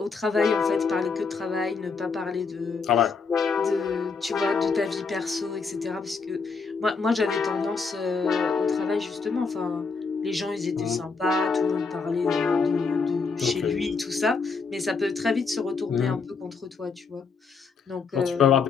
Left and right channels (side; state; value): right; quieter; 4.9 dB